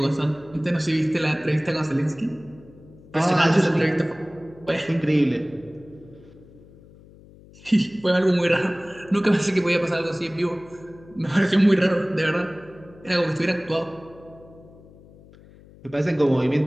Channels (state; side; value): noise; left; hum, 23 dB below the sound